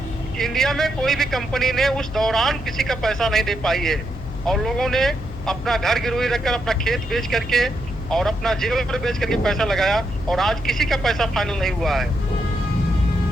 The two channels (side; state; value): left; noise; hum, 11 dB below the sound